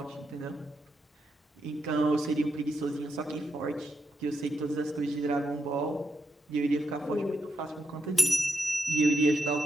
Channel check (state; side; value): normal; both; correlation 0.83